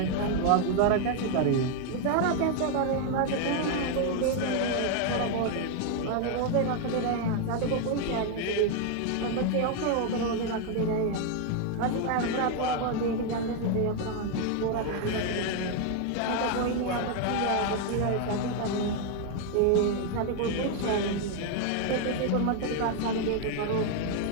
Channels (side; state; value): both; different; correlation 0.01